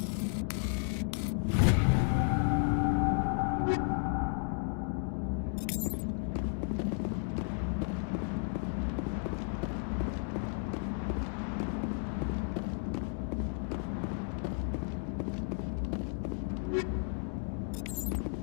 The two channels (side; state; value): right; silent; 55 dB below the other